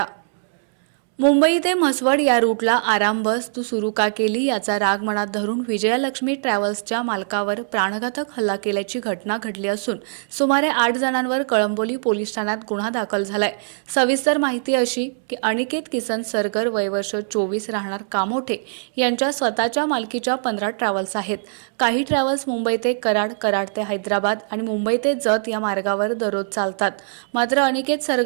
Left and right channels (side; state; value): left; silent; 64 dB below the other